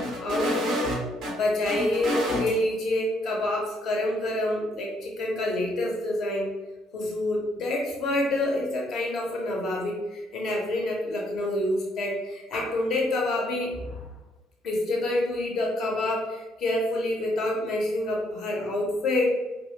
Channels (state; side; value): normal; both; correlation 0.71